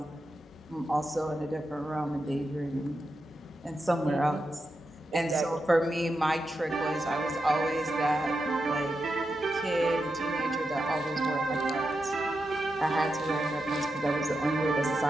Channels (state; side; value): normal; both; correlation 0.88